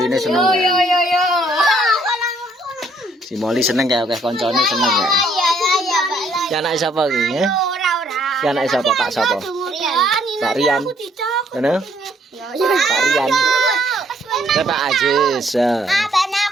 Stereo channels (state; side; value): normal; both; correlation 0.66